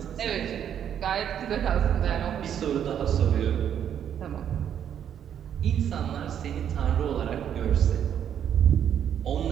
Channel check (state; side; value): quieter; left; 9.2 dB